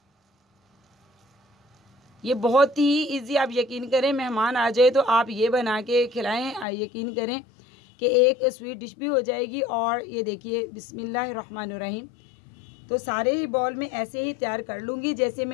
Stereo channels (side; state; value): right; drops out; at 6.7 s